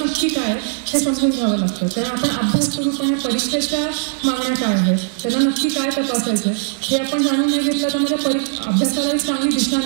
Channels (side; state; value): left; quieter; 39.6 dB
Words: काय आहे हे समजून घ्यावं लागतं. कारण आपण अभ्यास करू, पण या परीक्षेच्या मागण्या काय आहेत, त्यांना नक्की काय तपासायचं आहे हे आपण जाणून नाही घेतलं तर मग त्या अभ्यासाला एक चांगली दिशा